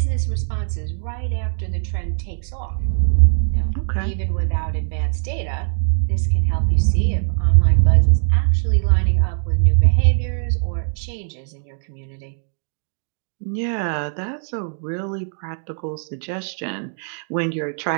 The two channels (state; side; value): silent; left; digital silence